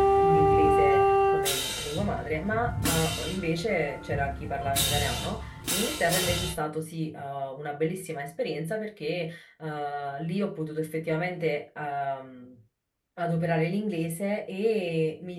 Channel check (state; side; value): identical; both; correlation 1.00